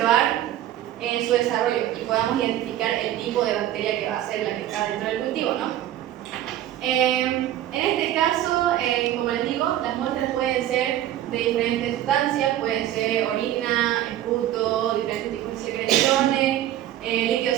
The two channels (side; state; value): left; quieter; 12.7 dB